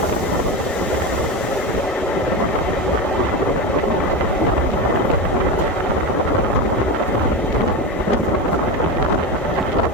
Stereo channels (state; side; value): normal; both; correlation 0.20